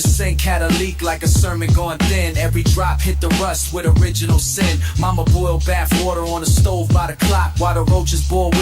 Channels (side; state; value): both; identical; correlation 1.00